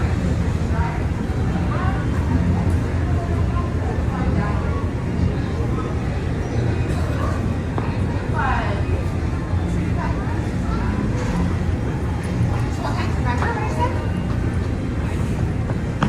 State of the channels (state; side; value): identical; both; correlation 1.00